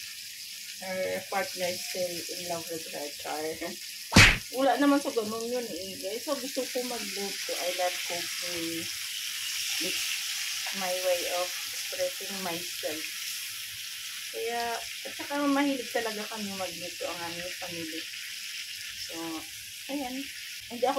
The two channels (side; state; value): both; identical; correlation 1.00